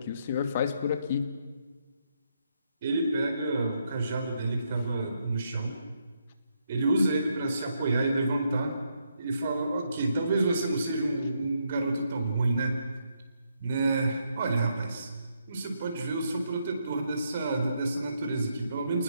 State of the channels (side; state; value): both; inverted; correlation -0.77